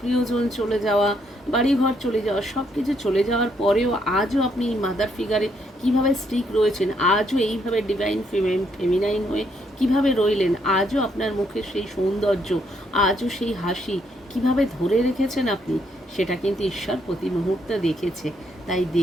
চলে যাওয়া, বাড়িঘর চলে যাওয়া, সব কিছু চলে যাওয়ার পরেও আজও আপনি এই মাদার ফিগারে কীভাবে স্টিক রয়েছেন, আজও এইভাবে ডিভাইন ফেমিনাইন হয়ে কিভাবে রইলেন, আজও আপনার মুখে সেই সৌন্দর্য, আজও সেই হাসি কিভাবে ধরে রেখেছেন আপনি, সেটা কিন্তু ঈশ্বর প্রতি মুহূর্তে দেখেছে। তাই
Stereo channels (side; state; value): both; normal; correlation 0.73